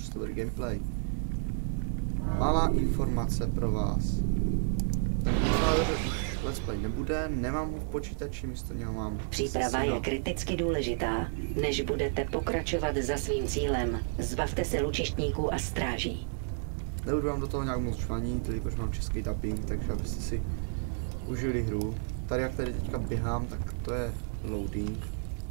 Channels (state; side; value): silent; left; 57 dB below the other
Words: bude gameplay. Malá informace pro vás. Ten Godfather už let's play nebude, nemám ho v počítači, místo něho mám... Příprava je kriticky důležitá. Než budete pokračovat za svým cílem, zbavte se lučištníků a stráží. Nebudu vám do toho nějak moc žvanit, jelikož mám český dubbing, takže abyste si užili hru. Tady jak tady teďka běhám, tak to je loading.